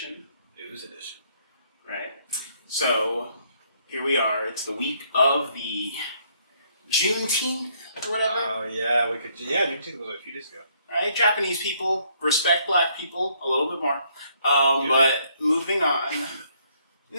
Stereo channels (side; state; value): both; inverted; correlation -0.68